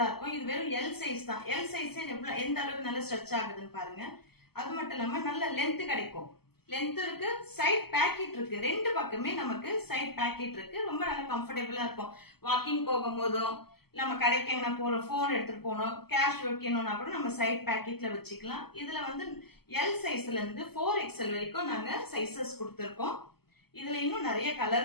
இருக்கும். இது வெறும் எல் சைஸ் தான். எல் சைஸ் எந்த அளவுக்கு நல்ல ஸ்ட்ரெச் ஆகுதுன்னு பாருங்க. அது மட்டும் இல்லாம நல்ல லென்த் கிடைக்கும். லென்த் இருக்கு, சைட் பேக்கெட் இருக்கு. ரெண்டு பக்கமே நமக்கு சைட் பேக்கெட் இருக்கு. ரொம்ப நல்ல கம்ஃபர்டபுளா இருக்கும். வாக்கிங் போகும்போதும் நம்ம கடைக்கு எங்கன்னா போறோம், போன் எடுத்துட்டு போனோம், கேஷ் வைக்கணும்னா கூட நம்ம சைட் பேக்கெட்ல வச்சுக்கலாம். இதுல வந்து எல் சைஸ்ல இருந்து 4XL வரைக்கும் நாங்க சைசஸ் கொடுத்துருக்கோம். இதுல இன்னும் நிறைய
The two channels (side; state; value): right; late; 0.96 ms